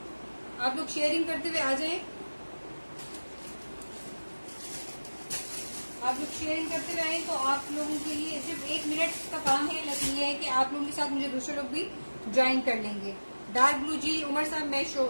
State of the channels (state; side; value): inverted; both; correlation -1.00